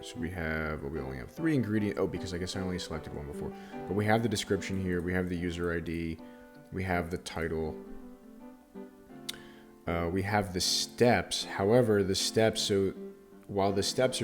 So we only have 3 ingredients. Oh, because I guess I only selected one before. But we have the description here, we have the user ID, we have the title, we have the steps. However, while the steps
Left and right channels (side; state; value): both; identical; correlation 1.00